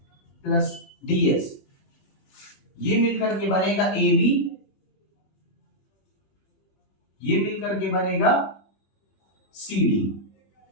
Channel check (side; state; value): right; late; 21 ms